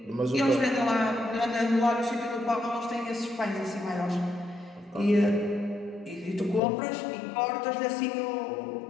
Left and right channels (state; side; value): drops out; right; at 6.6 s